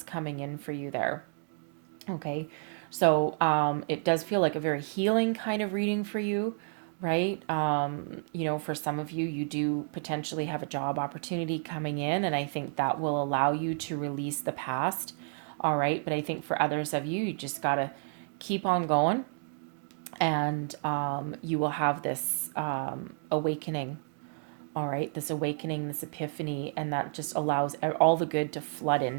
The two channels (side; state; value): left; silent; digital silence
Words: coming in for you there. Okay. So it does feel like a very healing kind of reading for you, right? For some of you, you do potentially have a job opportunity coming in, and I think that will allow you to release the past. All right. But I think for others of you, you just got to keep on going, and you will have this awakening. All right. This awakening, this epiphany, and that just allows all the good to flood